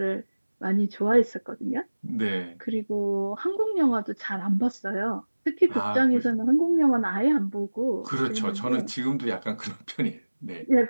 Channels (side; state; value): both; inverted; correlation -1.00